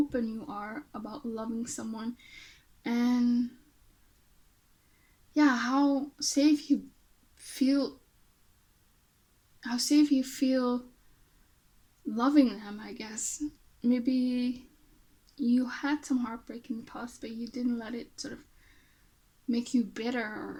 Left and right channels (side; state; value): both; identical; correlation 1.00